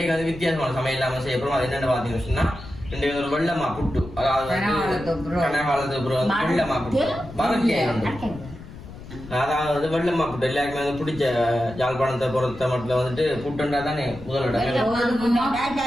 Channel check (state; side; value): noise; left; rumble, 15 dB below the sound